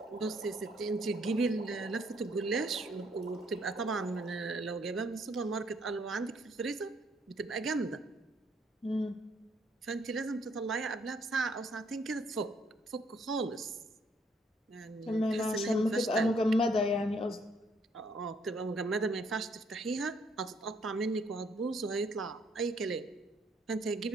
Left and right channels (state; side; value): normal; both; correlation 0.67